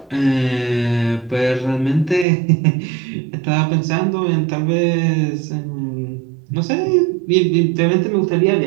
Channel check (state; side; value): drops out; left; at 2.2 s